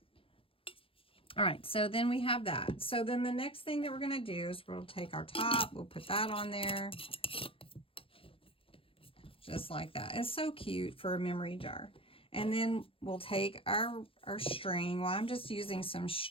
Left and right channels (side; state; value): right; late; 0.26 ms